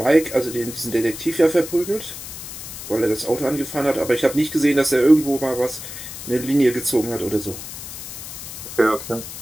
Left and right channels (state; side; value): noise; left; hiss, 10 dB below the sound